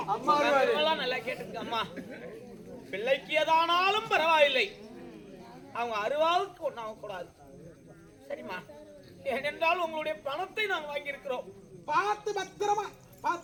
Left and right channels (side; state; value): both; identical; correlation 1.00